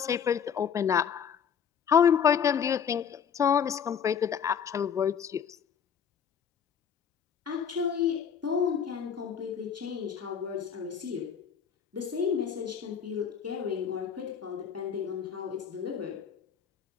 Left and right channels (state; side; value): quieter; right; 7.6 dB